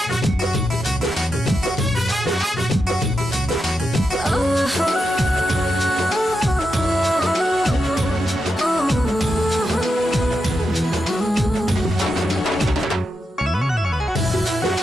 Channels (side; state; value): both; normal; correlation 0.87